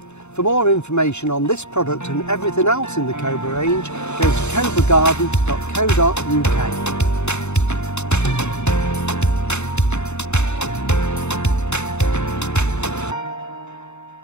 For more information on this product and everything else in the Cobra range, go to cobragarden.co.uk.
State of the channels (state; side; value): late; right; 0.82 ms